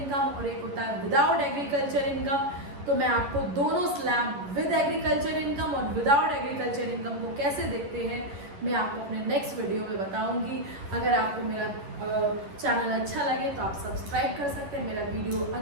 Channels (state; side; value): late; left; 11 ms